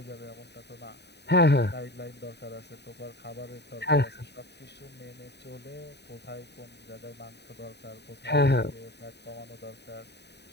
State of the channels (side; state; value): right; late; 0.49 ms